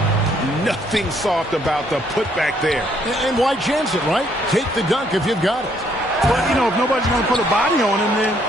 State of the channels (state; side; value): normal; both; correlation 0.68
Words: Nothing soft about the putback there. And why chance it, right? Take the dunk if you've got it. But, you know, if nobody's going to put a body on him, then